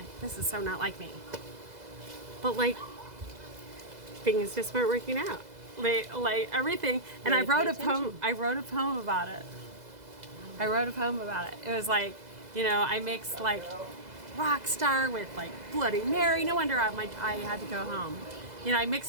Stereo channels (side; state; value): left; late; 2.0 ms